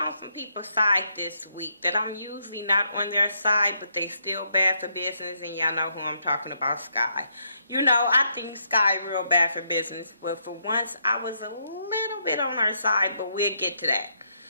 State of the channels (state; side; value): inverted; both; correlation -0.76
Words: some people's side this week that I'm usually not on their side, but they still bad for business, and y'all know who I'm talking about, Sky. You know, I think Sky real bad for business, but for once I was a little bit on her side, but we'll get to that.